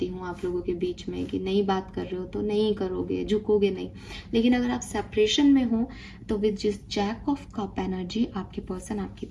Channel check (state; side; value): identical; both; correlation 1.00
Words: हूँ आप लोगों के बीच में कि नई बात कर रहे हो तो नहीं करोगे, झुकोगे नहीं। लेकिन अगर आप सेपरेशन में हो तो विद जिस जैक ऑफ कप एनर्जी आपके पर्सन आपकी